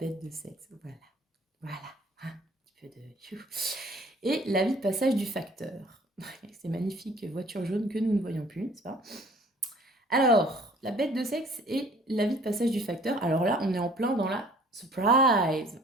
de sexe, voilà. Voilà, un petit peu de... Et la vie de passage du facteur. Ces magnifiques voitures jaunes que nous ne voyons plus, n'est-ce pas? Alors, la bête de sexe et la vie de passage du facteur. Alors là, on est en plein dans la surprise.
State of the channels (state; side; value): normal; both; correlation 0.54